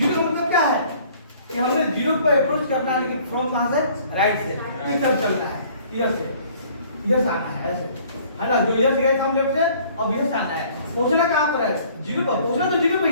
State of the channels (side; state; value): both; inverted; correlation -0.55